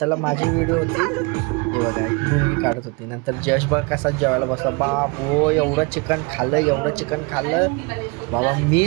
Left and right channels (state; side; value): quieter; left; 28.8 dB